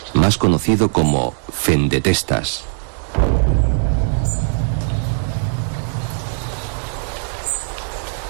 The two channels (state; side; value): silent; left; 66 dB below the other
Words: más conocido como Fendetestas.